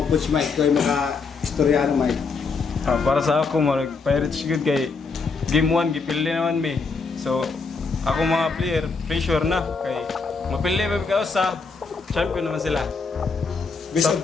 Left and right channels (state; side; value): quieter; right; 4.6 dB